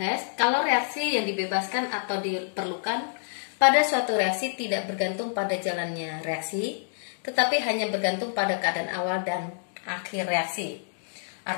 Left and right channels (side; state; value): right; silent; digital silence